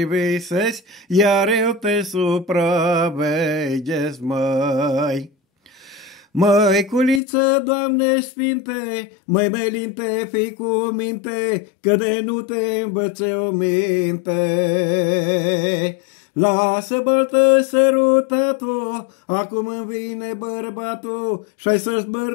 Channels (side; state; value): right; drops out; at 7.2 s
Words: iar eu te supraveghez, măi. Măi, culiță, Doamne sfinte, măi, melinte, fii cu minte, că de nu te învățe o minte. Lasă baltă sărutatul, acum îmi vine bărbatul și-ai să